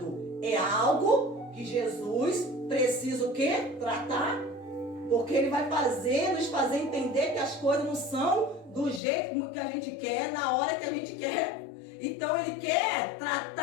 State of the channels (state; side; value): drops out; right; at 9.0 s